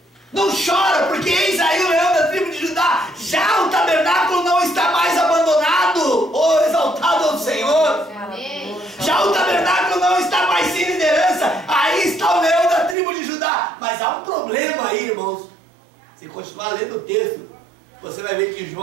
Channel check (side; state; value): left; drops out; at 13.0 s